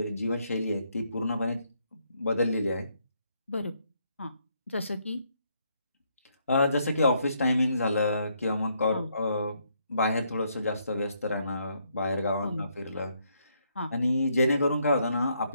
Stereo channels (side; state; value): both; inverted; correlation -0.74